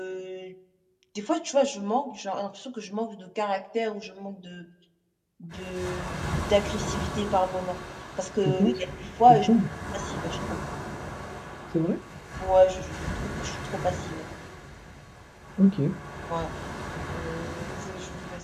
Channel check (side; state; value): both; identical; correlation 1.00